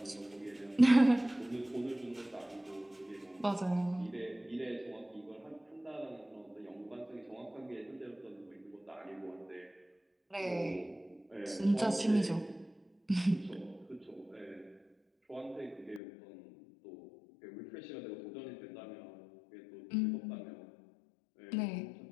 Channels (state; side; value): drops out; right; at 16.0 s